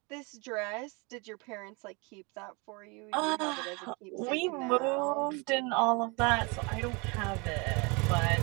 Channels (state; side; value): quieter; left; 29.7 dB